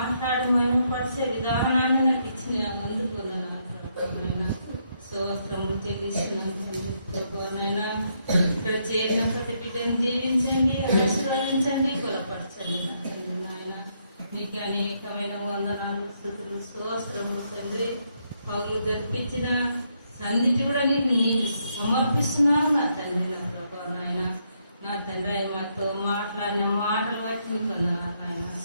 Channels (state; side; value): inverted; both; correlation -0.76